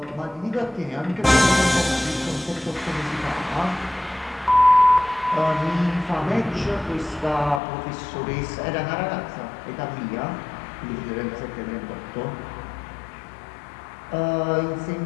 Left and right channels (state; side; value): drops out; right; at 7.6 s